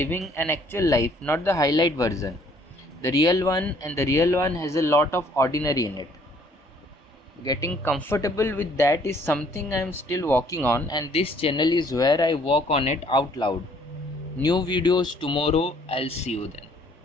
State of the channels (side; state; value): both; normal; correlation 0.61